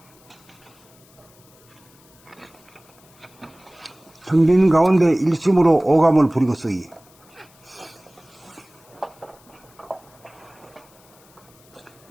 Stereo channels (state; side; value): noise; left; hiss, 28 dB below the sound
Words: 텅 빈 가운데 일심으로 오감을 부리고 쓰기.